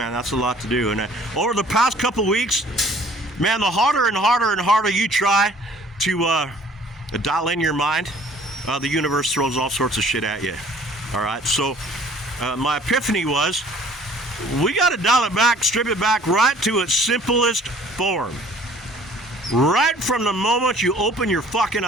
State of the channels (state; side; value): normal; both; correlation 0.53